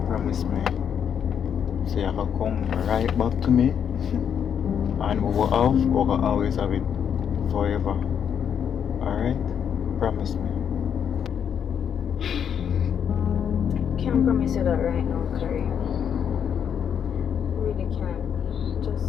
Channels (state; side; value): quieter; right; 8.1 dB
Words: promise me. So you have to come right back to me. And we will always have it forever. Alright? Promise me. Can't promise you that right now, Kareem. Really can't.